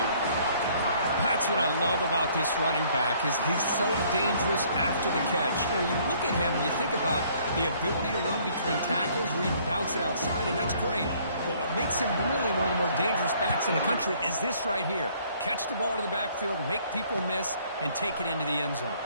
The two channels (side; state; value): both; inverted; correlation -0.61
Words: That's what I love about this running back is he's so dangerous after the catch. You look at him and you think about the ability to run between tackles or even bounce it outside, and that's great. But what makes him really one of the more dangerous backs in the country is this right here. Catch the ball to the backfield, make people miss, and take it into the end zone.